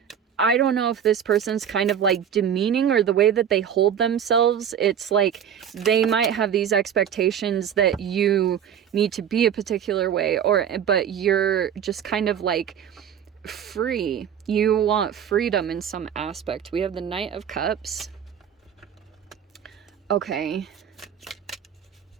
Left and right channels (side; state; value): left; quieter; 8.7 dB